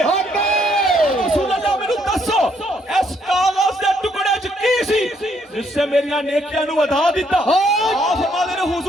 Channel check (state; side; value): normal; both; correlation 0.70